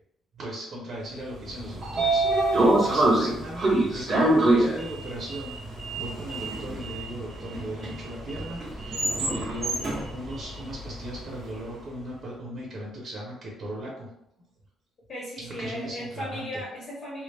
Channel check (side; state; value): both; normal; correlation 0.75